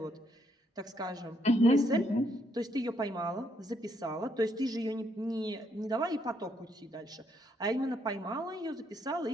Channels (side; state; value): both; normal; correlation 0.73